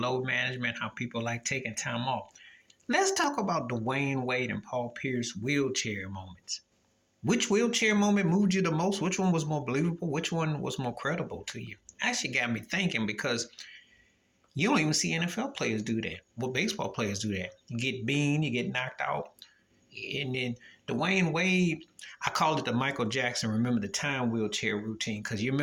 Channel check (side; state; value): both; identical; correlation 1.00